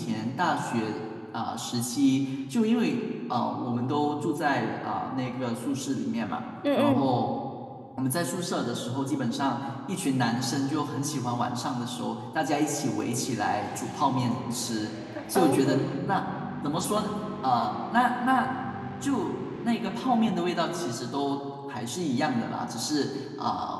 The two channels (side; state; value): both; identical; correlation 1.00